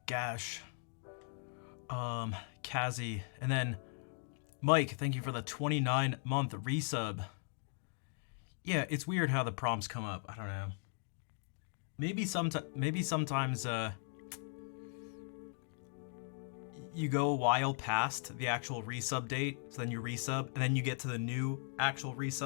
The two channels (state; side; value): silent; right; 52 dB below the other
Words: Gash, Kazi, and then Mike, thank you for the 29-month resub. Yeah, it's weird how the prompts come up. I don't know. Maybe sometimes you go a while past the actual resub date, so then you resub, and then you get to the new actual